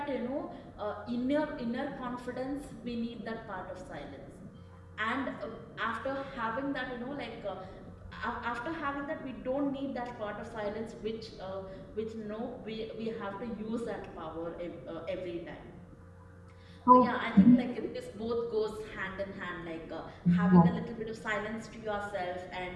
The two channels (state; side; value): identical; both; correlation 1.00